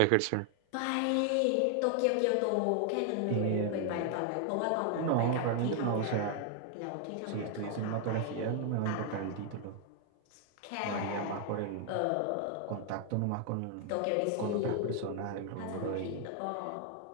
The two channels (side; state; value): both; different; correlation 0.00